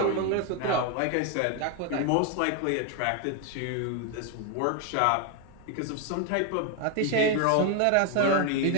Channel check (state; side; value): different; both; correlation 0.01